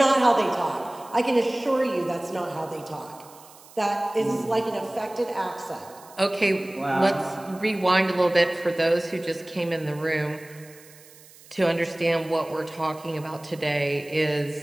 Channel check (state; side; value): noise; right; hiss, 23 dB below the sound